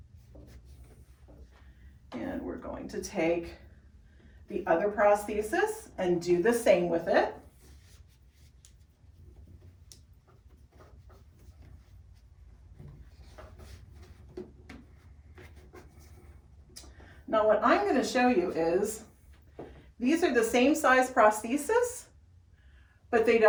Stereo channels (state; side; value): identical; both; correlation 1.00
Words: And we're going to take the other prosthesis and do the same with it. Now what I'm going to show you is these are the same size prosthesis, but they